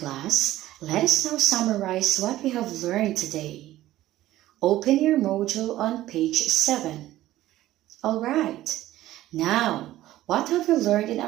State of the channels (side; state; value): left; quieter; 14.9 dB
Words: let us now summarize what we have learned today. Open your module on page 7. Alright, now, what have we learned in